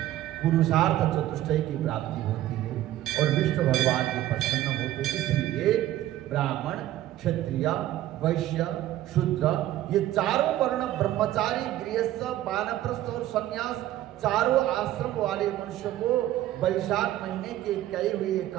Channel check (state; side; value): quieter; left; 13.9 dB